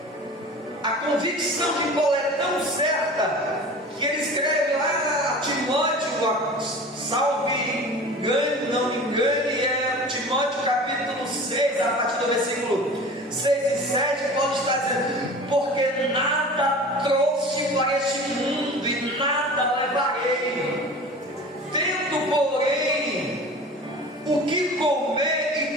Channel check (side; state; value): both; normal; correlation 0.38